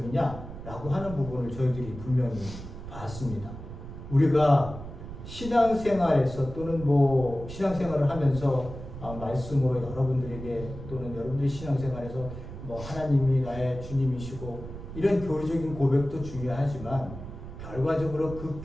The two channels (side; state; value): right; noise; rumble, 11 dB below the sound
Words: 하는 부분을 저희들이 분명히 봤습니다. 우리가 신앙생활에서 또는 신앙생활을 하면서 말씀으로 여러분들에게 또는 여러분들의 신앙생활에서 하나님이 나의 주님이시고 이런 교리적인 고백도 중요하지만 결과적으로